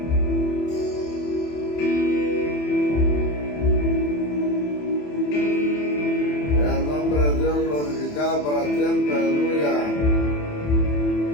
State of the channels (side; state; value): right; late; 27 ms